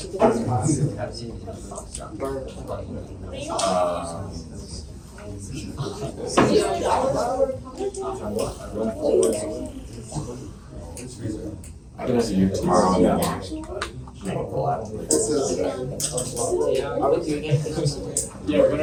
I can have you tomorrow. Yeah. Are we doing it? Yeah, we're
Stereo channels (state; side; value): identical; both; correlation 1.00